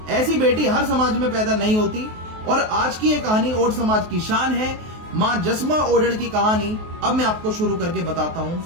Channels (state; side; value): late; left; 23 ms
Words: ऐसी बेटी हर समाज में पैदा नहीं होती, और आज की ये कहानी ओड समाज की शान है। मां जसमा ओडण की कहानी अब मैं आपको शुरू करके बताता हूँ।